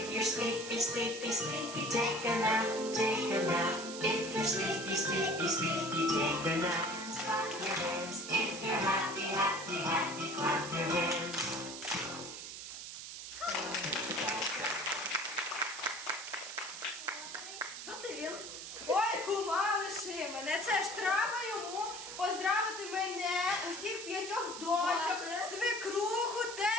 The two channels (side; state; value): right; noise; hiss, 9 dB below the sound